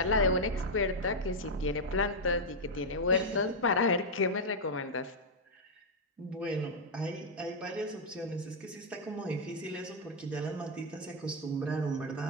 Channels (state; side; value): normal; both; correlation -0.02